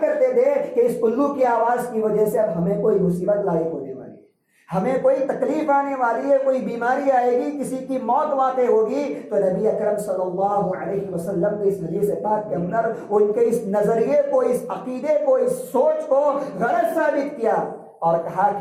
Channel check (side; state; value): both; identical; correlation 1.00